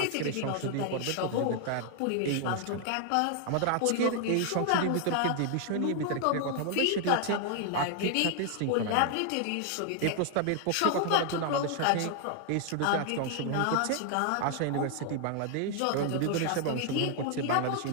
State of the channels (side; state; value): both; different; correlation 0.00